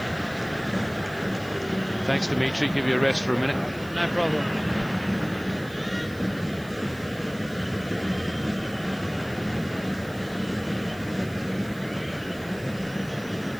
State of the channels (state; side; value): noise; right; hiss, 21 dB below the sound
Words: Thanks, Dimitri. Give you a rest for a minute. No problem.